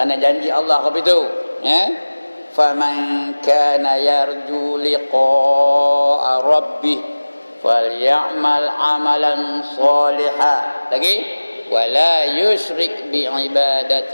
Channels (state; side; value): inverted; both; correlation -1.00